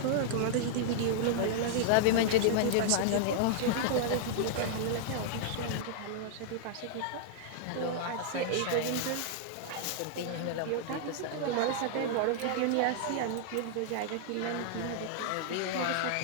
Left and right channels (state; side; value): different; both; correlation -0.01